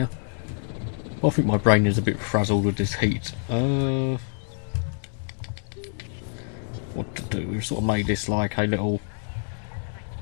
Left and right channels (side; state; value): right; silent; 61 dB below the other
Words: Well, I think my brain is a bit frazzled with this heat. What to do? We've sort of made this like a little